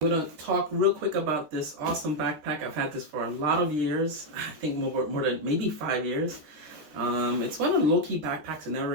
I'm gonna talk real quick about this awesome backpack. I've had this for a lot of years. I think more than maybe 5 years. It's one of the low-key backpacks I never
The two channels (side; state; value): left; late; 13 ms